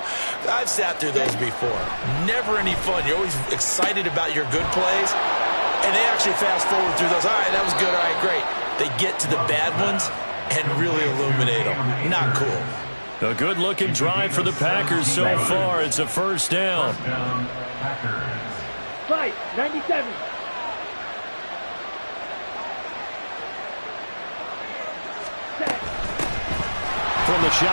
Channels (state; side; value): inverted; both; correlation -1.00